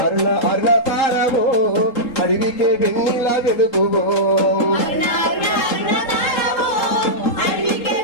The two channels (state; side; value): late; right; 3.7 ms